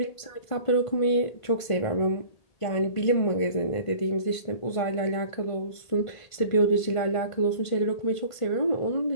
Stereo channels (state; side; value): late; right; 1.5 ms